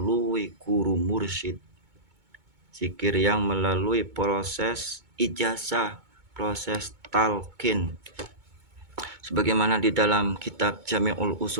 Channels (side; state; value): left; late; 2.2 ms